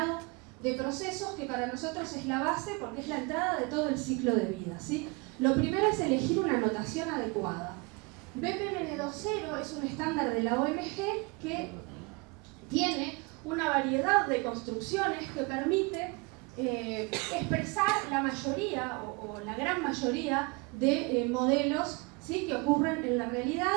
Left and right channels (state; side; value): quieter; left; 28.0 dB